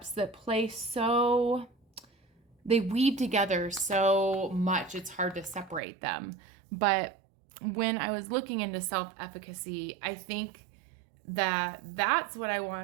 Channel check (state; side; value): drops out; left; at 5.8 s